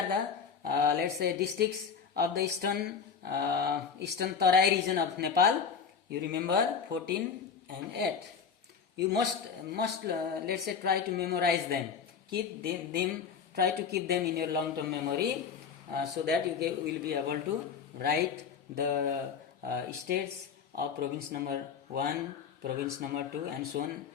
the let's say districts of the eastern Tarai region of Nepal. You remember 14 and 8. You must let's say try to memorize them. Try to keep them in your long-term memory so that you will be able to write the states of province number 1, province number 2, and so on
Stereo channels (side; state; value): right; quieter; 6.4 dB